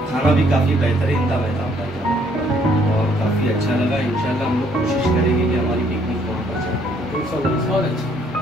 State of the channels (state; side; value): noise; right; hum, 24 dB below the sound